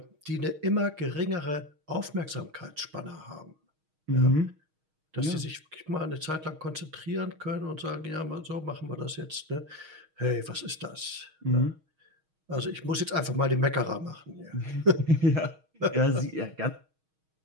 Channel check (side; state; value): left; late; 6.4 ms